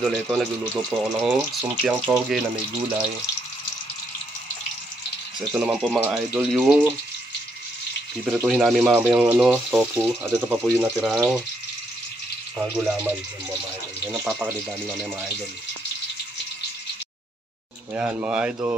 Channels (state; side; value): normal; both; correlation 0.75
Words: ito nagluluto po ako ng sumpiang toge na may gulay. So ito naman po mga idol yung pipirituhin namin mamayang tofu. At ito pa po yung natirang mga gulaman. Yan mga idol. Yan ang papakalit namin namin mga idol. Ayan mga